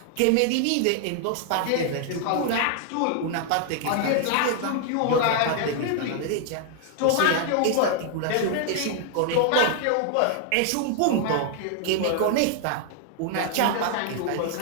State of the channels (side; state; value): both; different; correlation 0.00